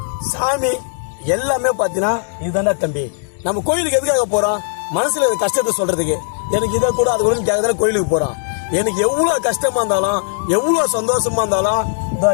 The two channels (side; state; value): right; silent; 67 dB below the other